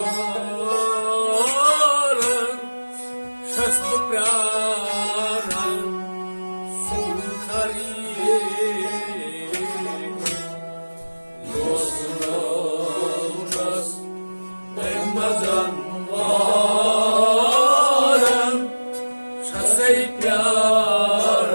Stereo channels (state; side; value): inverted; both; correlation -1.00